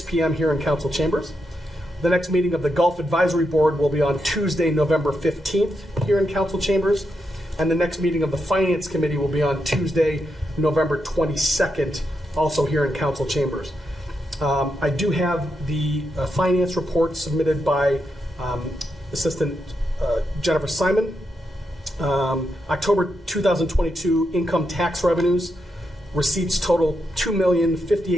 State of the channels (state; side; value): normal; both; correlation 0.83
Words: p.m. here in Council Chambers. The next meeting of the Gulf Advisory Board will be on Tuesday, November 15th here in Council Chambers. And the next meeting of the Finance Committee will be on Tuesday, November 22nd, also here in Council Chambers. I do have the finance report submitted by Assistant Jennifer Simon. October 2022 income tax revenues. Receipts total